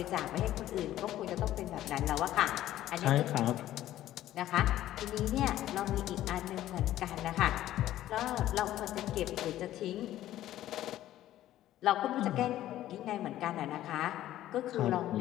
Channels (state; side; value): quieter; right; 13.5 dB